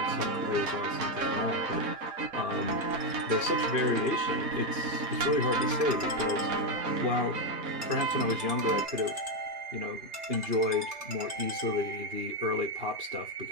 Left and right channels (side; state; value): left; late; 3.4 ms